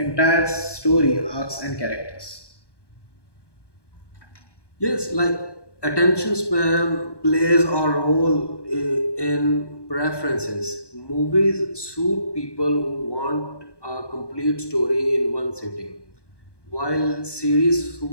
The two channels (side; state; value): right; late; 1.2 ms